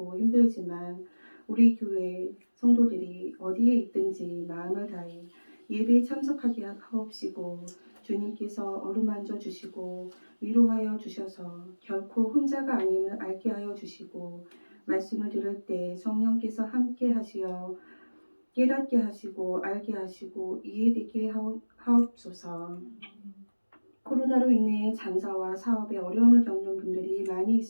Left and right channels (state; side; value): inverted; both; correlation -1.00